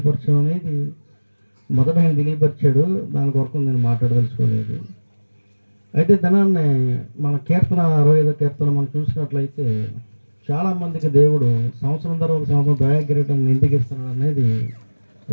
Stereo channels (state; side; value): inverted; both; correlation -1.00